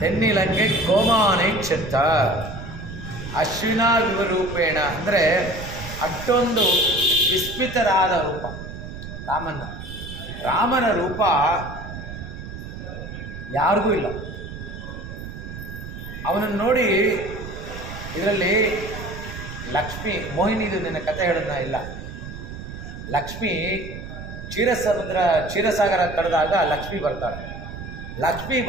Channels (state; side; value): noise; right; rumble, 10 dB below the sound